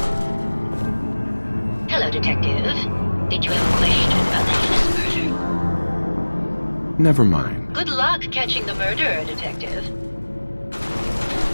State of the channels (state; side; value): inverted; both; correlation -1.00